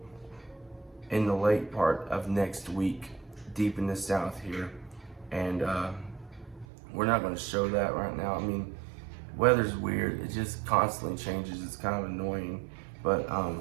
in the late part of next week, deep in the south here. And we're not going to show that right now. I mean, weather's weird. It just constantly changes. It's kind of annoying. But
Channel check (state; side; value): drops out; left; at 6.7 s